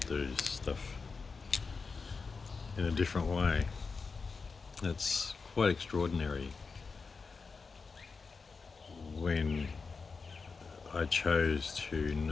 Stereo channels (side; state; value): right; quieter; 4.7 dB